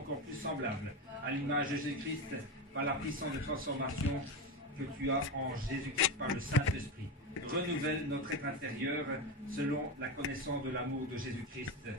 plus semblables à l'image de Jésus-Christ par la puissance de transformation que tu as en Jésus-Christ par le Saint-Esprit. Renouvelle notre être intérieur selon la connaissance de l'amour de Jésus-Christ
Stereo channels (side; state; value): both; normal; correlation 0.18